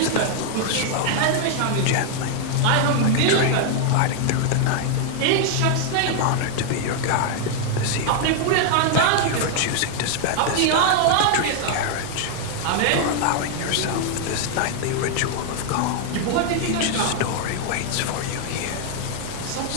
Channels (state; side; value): different; both; correlation 0.00